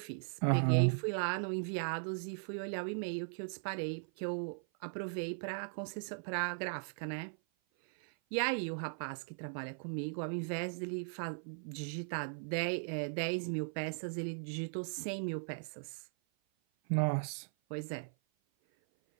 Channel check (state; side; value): silent; left; 52 dB below the other